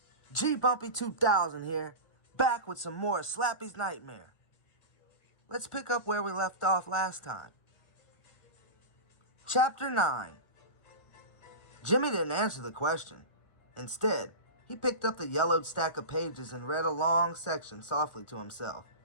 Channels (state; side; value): late; right; 1.4 ms